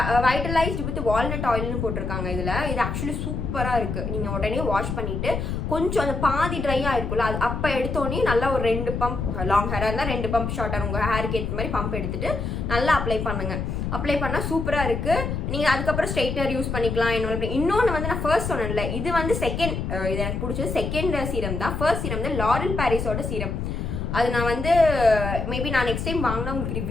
வைட்டலைஸ்டு வித் வால்நட் ஆயில்னு போட்டிருக்காங்க. இது ஆக்சுவலி சூப்பராக இருக்குது. நீங்கள் உடனே வாஷ் பண்ணிவிட்டு கொஞ்சம் அந்த பாதி ட்ரையாக இருக்குல்ல, அது அப்போ எடுத்தோடனே நல்லா ஒரு 2 பம்ப், லாங் ஹேராக இருந்தால் 2 பம்ப், ஷார்ட்டாக உங்கள் ஹேருக்கு ஏற்ற மாதிரி பம்ப் எடுத்துகிட்டு நல்லா அப்ளை பண்ணுங்கள். அப்ளை பண்ணால் சூப்பராக இருக்குது. நீங்கள் அதுக்கப்புறம் ஸ்ட்ரைட்னர் யூஸ் பண்ணிக்கலாம். இன்னொன்று வந்து நான் ஃபர்ஸ்ட் சொன்னேன்ல, இது வந்து செகண்ட், இது எனக்கு பிடிச்சது செகண்ட் சீரம் தான். ஃபர்ஸ்ட் சீரம் வந்து லாரல் பாரிஸோட சீரம். அது நான் வந்து மேபி நான் நெக்ஸ்ட் டைம் வாங்கினா உங்களுக்கு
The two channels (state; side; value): noise; left; rumble, 3 dB below the sound